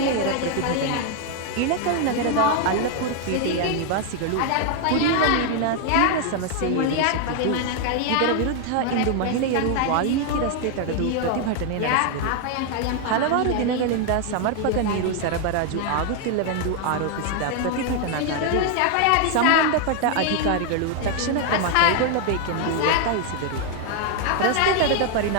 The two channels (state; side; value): different; both; correlation 0.00